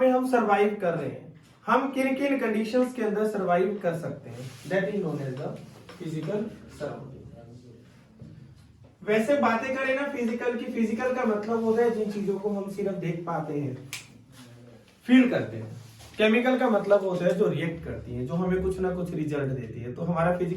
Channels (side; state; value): both; identical; correlation 1.00